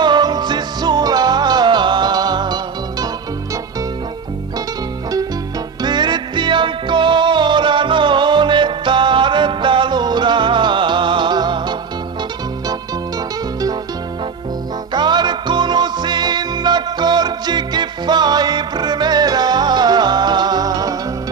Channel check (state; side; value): quieter; left; 5.9 dB